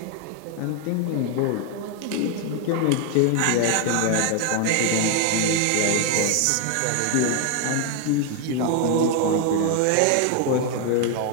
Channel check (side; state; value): both; different; correlation 0.01